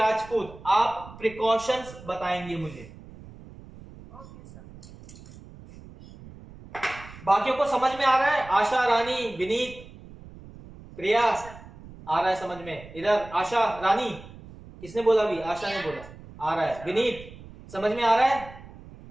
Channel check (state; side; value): noise; right; rumble, 18 dB below the sound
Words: आप प्रिकॉशंस बताएंगे मुझे। Okay sir. बाकियों को समझ में आ रहा है? आशा, रानी, विनीत, प्रिया, आ रहा है समझ में? इधर आशा, रानी, किसने बोला? अभी आशा ने बोला आ रहा है। विनीत, समझ में आ रहा है?